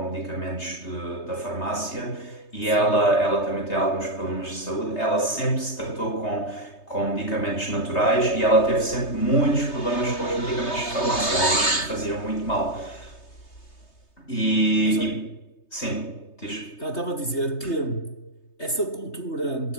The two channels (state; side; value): late; right; 3.3 ms